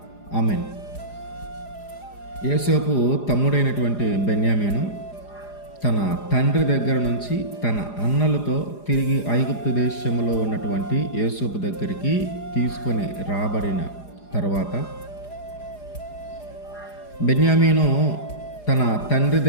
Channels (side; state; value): right; late; 4.9 ms